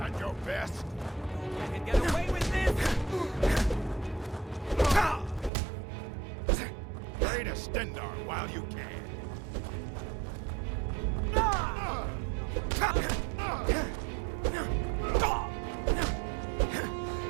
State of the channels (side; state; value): left; drops out; at 5.5 s